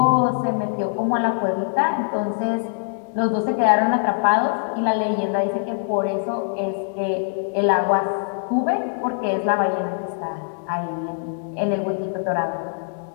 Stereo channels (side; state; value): right; silent; 62 dB below the other